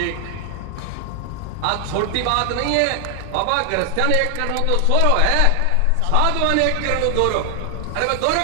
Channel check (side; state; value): both; different; correlation 0.00